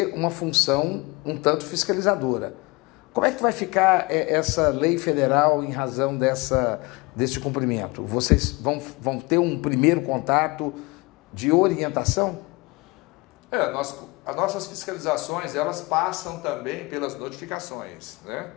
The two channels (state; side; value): quieter; right; 24.8 dB